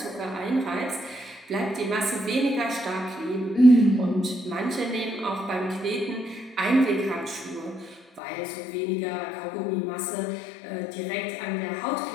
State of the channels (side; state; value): right; drops out; at 8.2 s